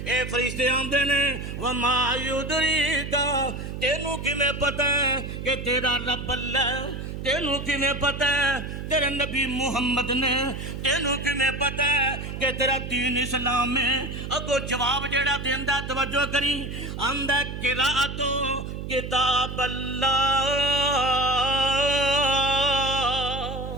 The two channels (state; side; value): noise; right; hum, 7 dB below the sound